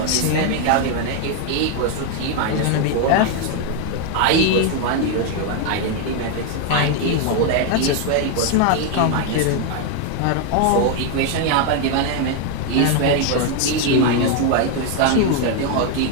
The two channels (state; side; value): different; both; correlation 0.01